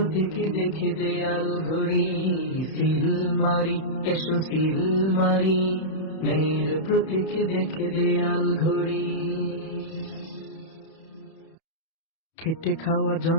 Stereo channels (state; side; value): late; right; 31 ms